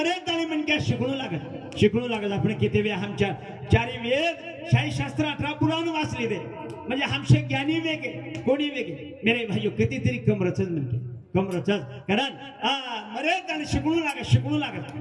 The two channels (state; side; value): identical; both; correlation 1.00